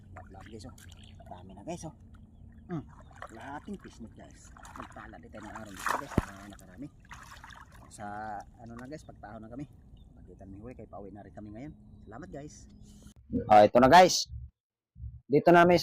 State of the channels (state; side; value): identical; both; correlation 1.00